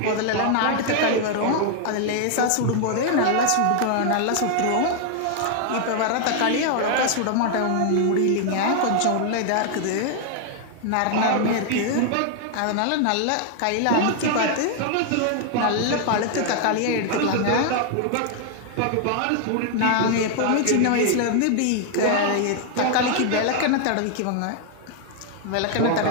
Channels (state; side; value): different; both; correlation 0.00